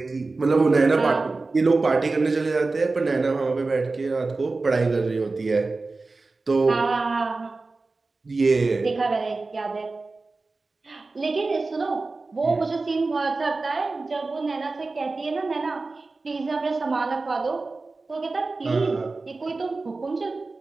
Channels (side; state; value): left; quieter; 3.6 dB